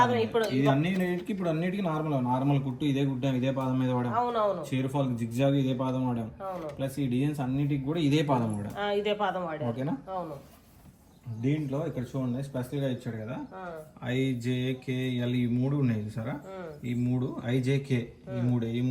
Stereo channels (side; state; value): both; identical; correlation 1.00